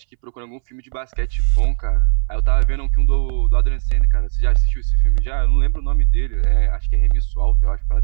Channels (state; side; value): silent; left; 64 dB below the other